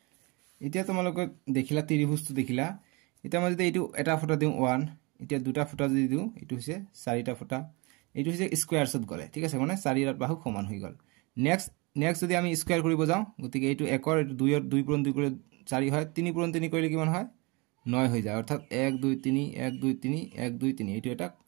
এতিয়া তোমালোকে দেখিলা ত্ৰিভুজটো দেখিলা এটা মই যদি এইটো এটা ফুটা দিও 1 এতিয়া দুটা ফুটা যদি দিও এইটো হৈছে চাৰিটা ফুটা এইটো হৈছে স্কয়াৰছত গলে ঠিক আছে মানে 4 এৰ বাহু সমান হৈ গল নেক্সট যদি আমি স্কয়াৰ কৰিব যাও গতিকে এইটো 1 এৰ 2 এৰ 2 পূৰণ 2 কৰি 4 হয় 3 পূৰণ 3 কৰিলে কিমান হয় 9 হৈ যায় অৰ্থাৎ 1 2 3 1 2 3 1 2 3 এইটো এটা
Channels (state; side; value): quieter; left; 27.7 dB